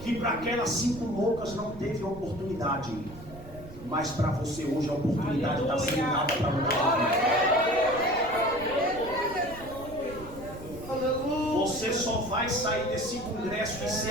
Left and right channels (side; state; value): right; noise; rumble, 16 dB below the sound